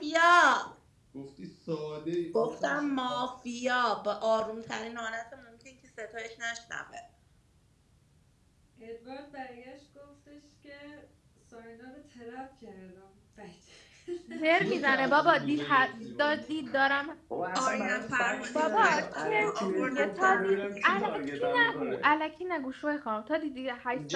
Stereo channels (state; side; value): identical; both; correlation 1.00